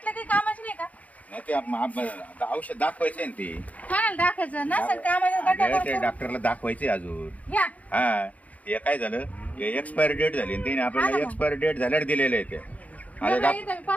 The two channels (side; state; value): right; late; 0.071 ms